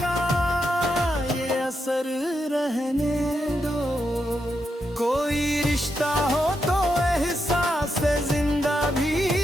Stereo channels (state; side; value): normal; both; correlation 0.84